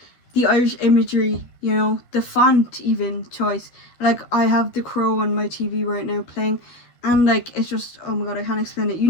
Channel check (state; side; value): late; right; 12 ms